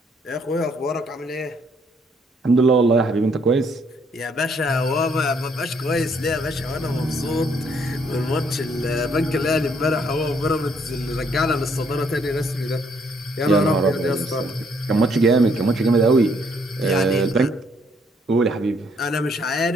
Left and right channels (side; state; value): both; normal; correlation 0.68